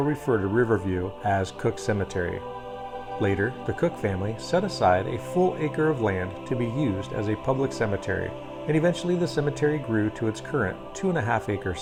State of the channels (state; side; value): identical; both; correlation 1.00